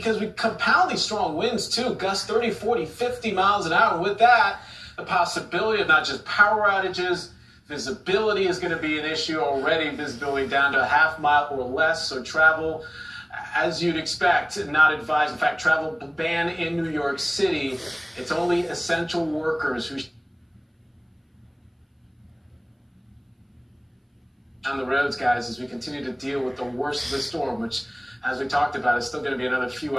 we compound these strong winds too, gusts 30, 40, 50 miles an hour. And with that, the possibility of not just power outages, visibility is going to be an issue already, visibility down to a half mile or less, so travel, as you'd expect, not advised. In fact, travel ban in New York City. It's only essential workers who on the roads, guys, as we continue to deal with the worst of the storm, which, as we talked about, is still going to be another few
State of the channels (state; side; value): identical; both; correlation 1.00